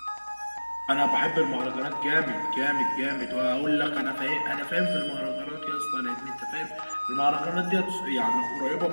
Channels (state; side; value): inverted; both; correlation -1.00